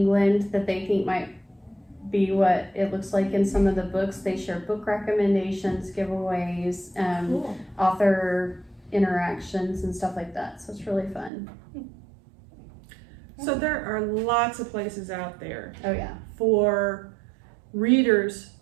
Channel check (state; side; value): drops out; left; at 11.3 s